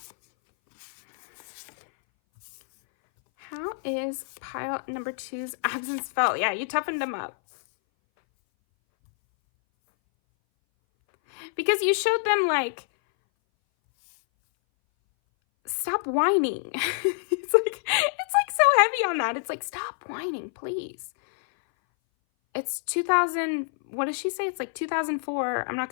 How is pile number 2's absence felt? Yeah, you toughened them up. because you showed them like, stop whining. It's like so heavy on that. It's like, stop whining, please. It's 2000, what does she say? It's like 2004. I'm not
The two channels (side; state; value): right; silent; 59 dB below the other